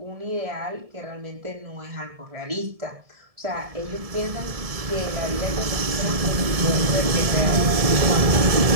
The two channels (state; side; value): late; left; 1.7 ms